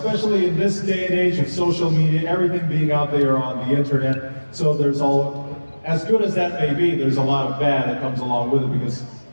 in this day and age of social media, everything being out there on the internet. So there's as good as that may be, there's a lot of bad that comes along with it, because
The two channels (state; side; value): inverted; both; correlation -1.00